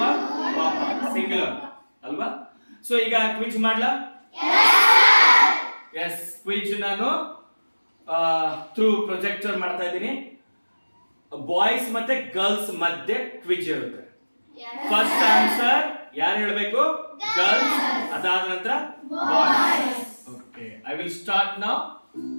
ಸಿಂಗುಲರ್ ಅಲ್ವಾ? ಸೊ ಈಗ ಕ್ವಿಜ್ ಮಾಡ್ಲಾ? ಎಸ್, ಕ್ವಿಜ್ ನಾನು ಥ್ರೂ ಪ್ರೊಜೆಕ್ಟರ್ ಮಾಡ್ತಾ ಇದ್ದೀನಿ. ಬಾಯ್ಸ್ ಮತ್ತೆ ಗರ್ಲ್ಸ್ ಮಧ್ಯೆ ಕ್ವಿಜ್ ಇರುತ್ತೆ. ಫಸ್ಟ್ ಆನ್ಸರ್ ಯಾರು ಹೇಳಬೇಕು? ಗರ್ಲ್ಸ್. ಅದಾದ ನಂತರ boys. Okay, I will start now.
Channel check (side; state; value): both; inverted; correlation -1.00